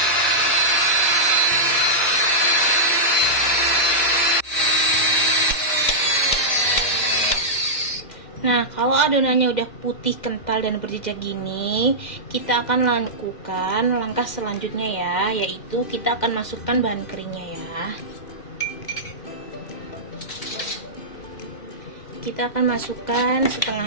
Nah, kalau adonannya udah putih, kental, dan berjejak gini, kita akan lakukan langkah selanjutnya ya, yaitu kita akan masukkan bahan keringnya ya. kita akan masukkan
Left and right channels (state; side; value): late; right; 2.1 ms